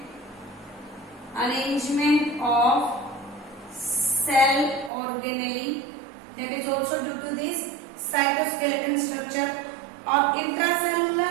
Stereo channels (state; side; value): drops out; left; at 4.9 s